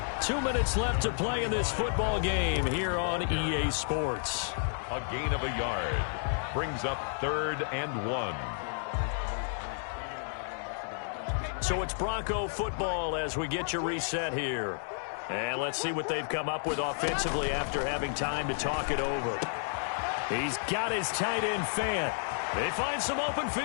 2 minutes left to play in this football game here on EA Sports. A gain of a yard. Brings up 3rd and 1. So it's Bronco football as we get you reset here. And let's see what they've come up with offensively after having time to talk it over. He's got his tight end Fant. They find some open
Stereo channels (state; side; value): silent; right; digital silence